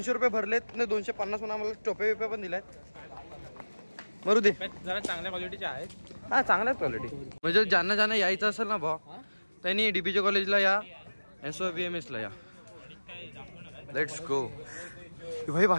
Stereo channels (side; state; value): both; inverted; correlation -1.00